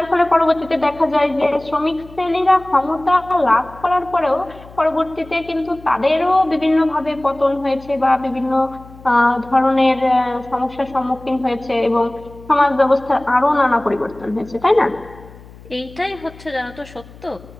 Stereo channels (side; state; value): left; noise; hum, 21 dB below the sound